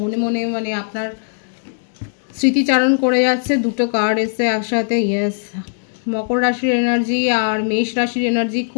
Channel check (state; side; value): silent; right; digital silence